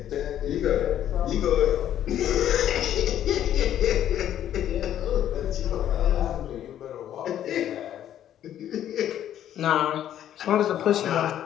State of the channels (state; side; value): quieter; right; 11.0 dB